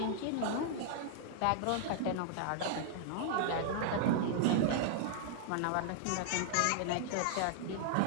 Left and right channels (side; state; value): both; different; correlation -0.01